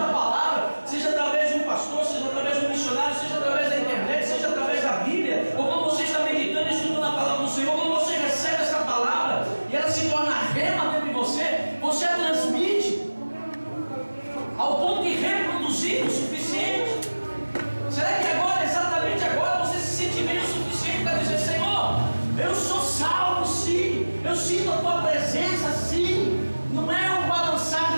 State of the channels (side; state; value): both; inverted; correlation -1.00